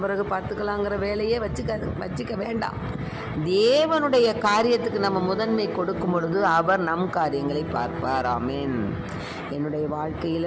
பிறகு பார்த்துக்கலாங்கிற வேலையே வச்சுக்க வேண்டாம். தேவனுடைய காரியத்துக்கு நம்ம முதன்மை கொடுக்கும் பொழுது அவர் நம் காரியங்களை பார்ப்பார். ஆமென். என்னுடைய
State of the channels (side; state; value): both; identical; correlation 1.00